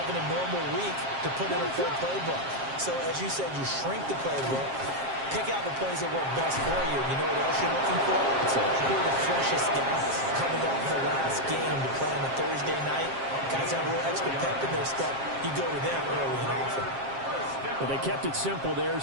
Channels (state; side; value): late; left; 7.5 ms